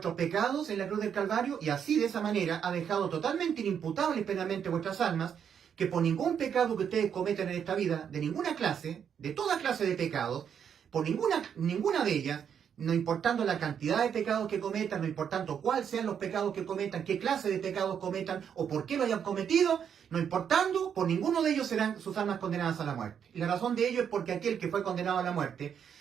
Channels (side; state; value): left; quieter; 8.0 dB